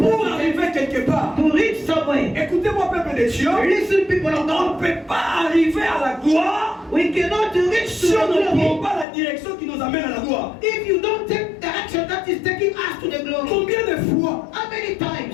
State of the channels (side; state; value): right; drops out; at 9.1 s